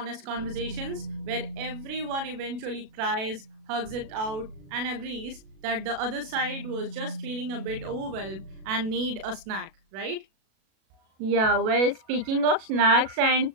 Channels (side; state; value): left; late; 37 ms